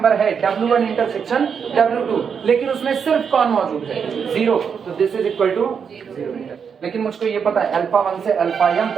है, W1 इंटरसेक्शन W2, लेकिन उसमें सिर्फ कौन मौजूद है, जीरो, तो this is equal to zero. लेकिन मुझको ये पता है अल्फा 1 से अल्फा M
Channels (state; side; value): quieter; left; 6.7 dB